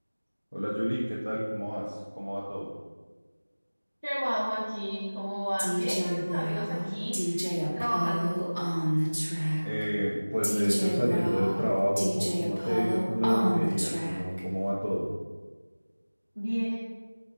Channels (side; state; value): both; inverted; correlation -1.00